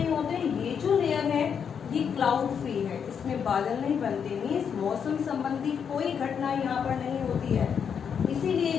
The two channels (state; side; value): quieter; right; 7.2 dB